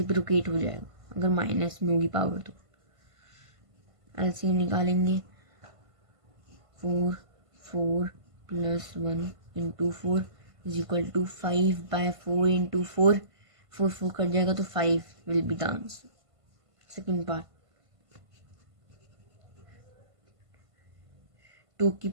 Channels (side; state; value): left; late; 1.5 ms